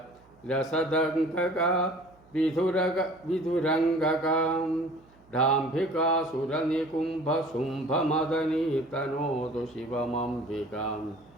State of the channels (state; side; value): noise; right; hum, 30 dB below the sound